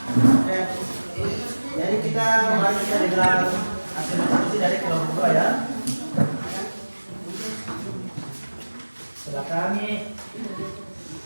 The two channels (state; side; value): inverted; both; correlation -1.00